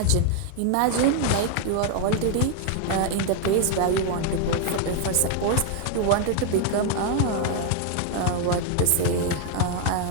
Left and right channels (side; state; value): both; different; correlation 0.01